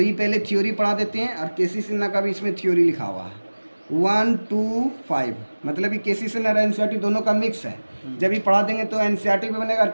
ये पहले थ्योरी पढ़ा देते हैं, और केसी सिन्हा का भी इसमें थ्योरी लिखा हुआ है 1 2 5, मतलब ये केसी सिन्हा और NCERT दोनों का मिक्स है। जब ये पढ़ा देंगे तो NCERT भी बनेगा और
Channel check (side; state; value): both; inverted; correlation -1.00